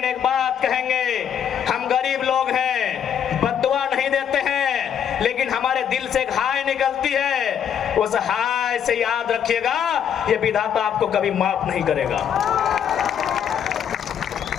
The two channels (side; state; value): right; quieter; 8.7 dB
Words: एक बात कहेंगे, हम गरीब लोग हैं, बद्दुआ नहीं देते हैं, लेकिन हमारे दिल से एक हाय निकलती है। उस हाय से याद रखिएगा, ये विधाता आपको कभी माफ नहीं करेगा।